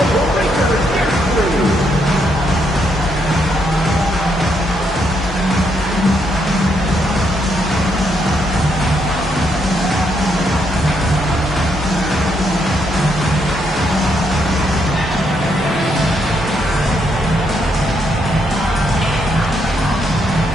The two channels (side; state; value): both; normal; correlation 0.76